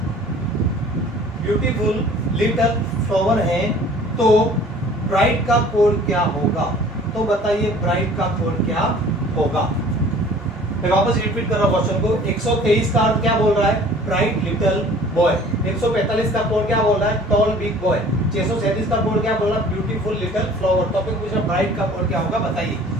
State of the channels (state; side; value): normal; both; correlation 0.49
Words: है, तो ब्राइट का कोड क्या होगा? तो बताइए ब्राइट का कोड क्या होगा? मैं वापस रिपीट कर रहा हूं क्वेश्चन को। 123 का अर्थ क्या बोल रहा है? Bright little boy. 145 का कोड क्या बोल रहा है? Toll big boy. 637 का कोड क्या बोल रहा है? Beautiful little flower. टॉपिक पूछा ब्राइट का कोड क्या होगा, बताइए।